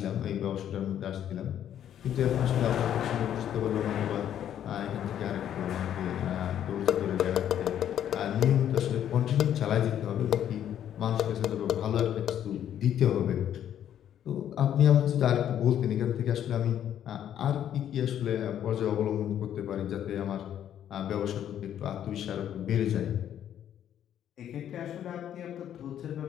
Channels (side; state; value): right; quieter; 10.3 dB